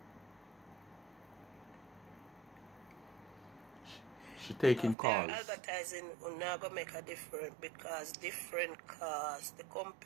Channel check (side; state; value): left; drops out; at 5.0 s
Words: She taking calls. Advertising will never make a difference because different cars, the